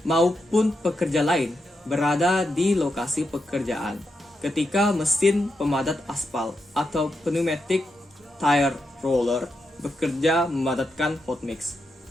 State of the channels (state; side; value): normal; both; correlation 0.85